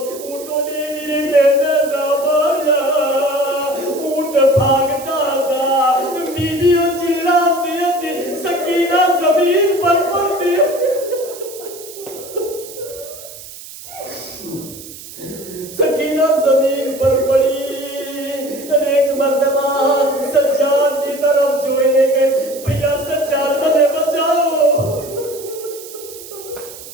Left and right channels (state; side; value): noise; right; hiss, 15 dB below the sound